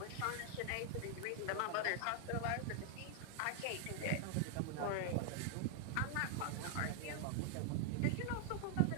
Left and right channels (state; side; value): different; both; correlation 0.00